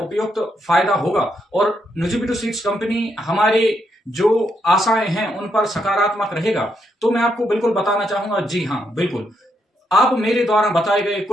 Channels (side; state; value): both; normal; correlation 0.78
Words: फायदा होगा और न्यूजीबीडू सीड्स कंपनी हमारे जो आशाएं हैं उन पर सकारात्मक रहेगा? तो मैं आपको बिल्कुल बताना चाहूंगा, जी हाँ बिल्कुल। आप मेरे द्वारा बताए गए